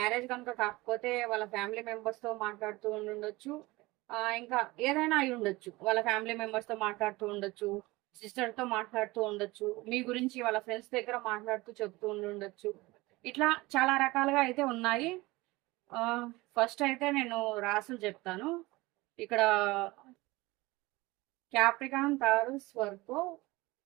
కనుక కాకపోతే వాళ్ళ ఫ్యామిలీ మెంబర్స్తో మాట్లాడుతూ ఉండొచ్చు, ఇంకా ఏదైనా అయి ఉండొచ్చు. వాళ్ళ ఫ్యామిలీ మెంబర్స్తో మాట్లాడుతూ ఉండొచ్చు, సిస్టర్తో మాట్లాడుతూ ఉండొచ్చు, మీ గురించి వాళ్ళ ఫ్రెండ్స్ దగ్గర మాట్లాడుతూ చెప్తూ ఉండొచ్చు. ఇట్లా చాలా రకాలుగా అయితే ఉన్నాయి. ఫస్ట్ అయితే నేను రాసులు చెప్తాను. ఇక్కడ క్యాప్రికాన్, తారస్, వర్గో,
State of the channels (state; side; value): quieter; left; 21.4 dB